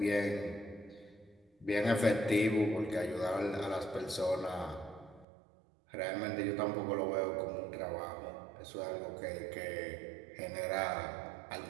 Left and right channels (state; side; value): drops out; left; at 5.2 s